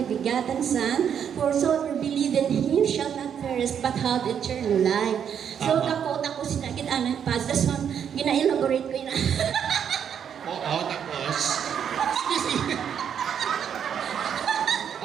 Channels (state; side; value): quieter; left; 8.3 dB